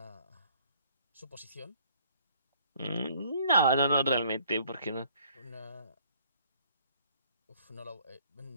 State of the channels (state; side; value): inverted; both; correlation -0.60